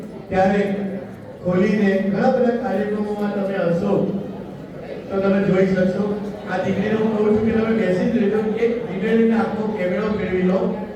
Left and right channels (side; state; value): both; identical; correlation 1.00